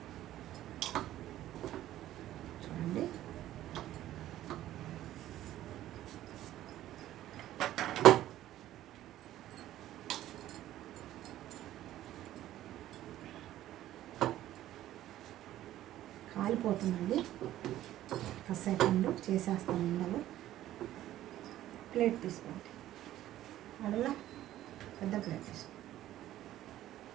చూడండి కాలిపోతుందండి. కాసేపు చేసేస్తాను. ఉండలు ప్లేట్ తీసుకోండి. అడలా పెద్ద ప్లేట్ తీసుకో.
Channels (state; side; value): quieter; left; 13.5 dB